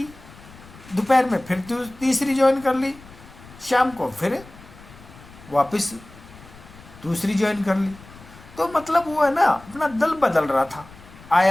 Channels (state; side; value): noise; left; rumble, 21 dB below the sound